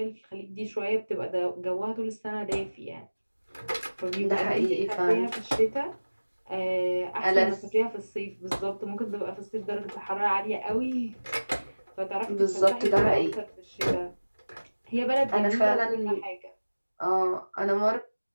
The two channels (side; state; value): both; inverted; correlation -1.00